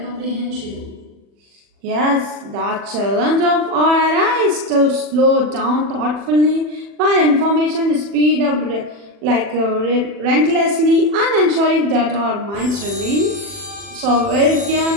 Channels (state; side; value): late; left; 40 ms